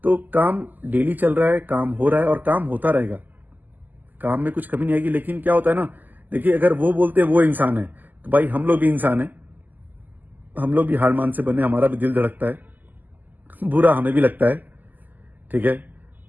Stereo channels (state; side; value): late; left; 0.085 ms